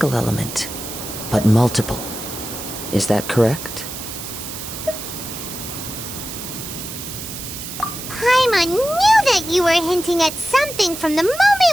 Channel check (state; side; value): noise; right; hiss, 9 dB below the sound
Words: element, but multiple. Is that correct? Paimon knew that you were hinting at something from the